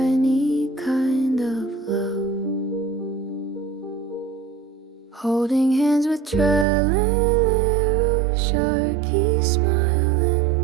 kind of love. Holding hands with Trellalero, Sharky smile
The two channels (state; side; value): drops out; left; at 6.7 s